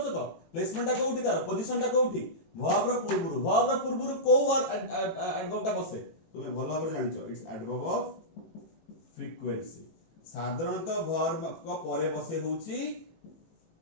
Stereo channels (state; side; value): late; right; 18 ms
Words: तो प्लेसमेंट टा कोउठी तार पोजीशन टा कोउठी वर्ब रो पूर्वुर को वर्ब एडवर्ब टा बसे तुमे भल भाबरे जानिछो इट्स एडवर्ब ऑफ फ्रीक्वेंसी साधारणतः वर्ब को परे बसे होउची